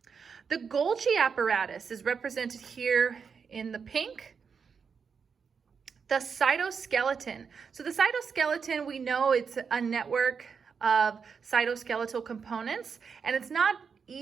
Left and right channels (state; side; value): quieter; left; 6.0 dB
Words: The Golgi apparatus is represented here in the pink. The cytoskeleton. So the cytoskeleton, we know it's a network of cytoskeletal components, and it's not